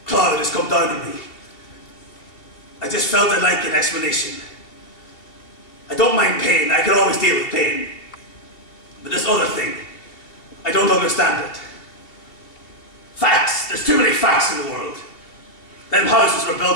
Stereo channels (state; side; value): late; right; 2.7 ms